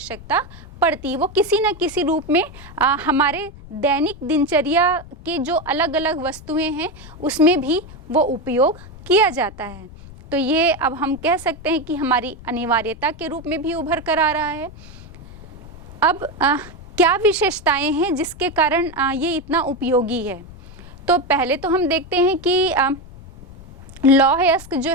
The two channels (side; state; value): left; noise; rumble, 18 dB below the sound